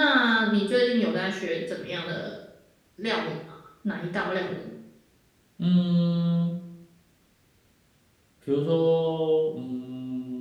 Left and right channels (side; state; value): both; identical; correlation 1.00